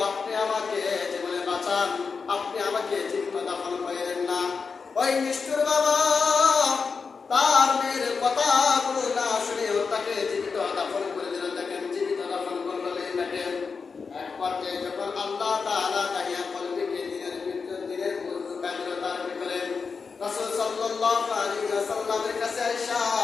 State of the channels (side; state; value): right; quieter; 5.2 dB